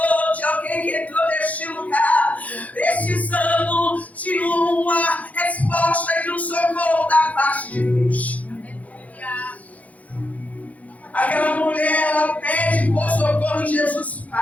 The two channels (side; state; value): right; late; 0.071 ms